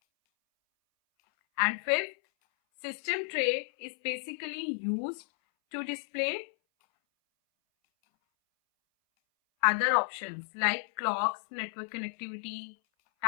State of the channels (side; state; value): right; silent; 56 dB below the other